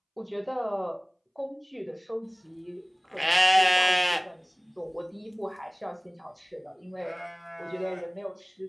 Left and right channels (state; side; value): identical; both; correlation 1.00